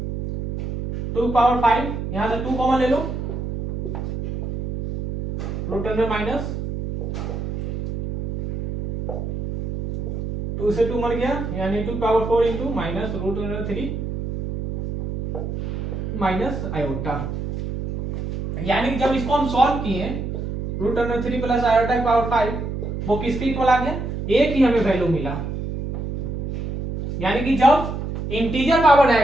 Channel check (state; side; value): noise; right; hum, 4 dB below the sound